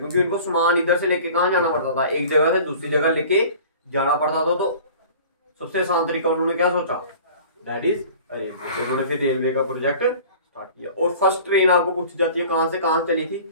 उनको सामान इधर से लेके कहाँ जाना पड़ता था, एक जगह से दूसरी जगह लेके जाना पड़ता था। तो सबसे आसान तरीका उन्होंने क्या सोचा, दैट इज रेलवे। उन्होंने फिर रेलवे का प्रोजेक्ट स्टार्ट किया। और फर्स्ट ट्रेन आपको पूछी जाती है कहां से कहां चली थी,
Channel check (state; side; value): inverted; both; correlation -0.44